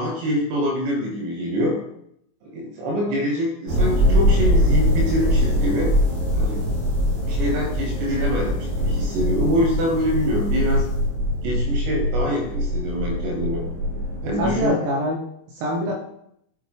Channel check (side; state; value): left; late; 24 ms